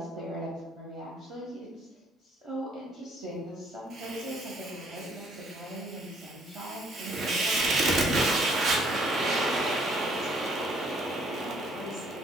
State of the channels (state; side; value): normal; both; correlation 0.64